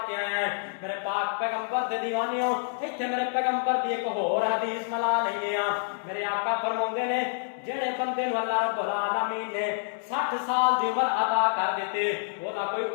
کے آیا ہے میرے پاک پیغمبر دے دیوانیوں ایتھے میرے پیغمبر دی ایک اور حدیث ملا نہیں لیا میرے آقا فرماندے نے جڑے بندے نو اللہ رب العالمین نے 60 سال دی عمر عطا کر دیتے او دا کوئی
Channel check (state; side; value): silent; right; digital silence